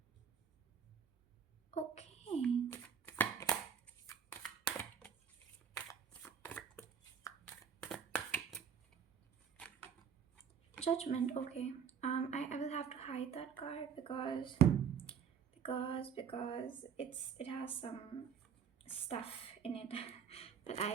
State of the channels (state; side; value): quieter; left; 7.4 dB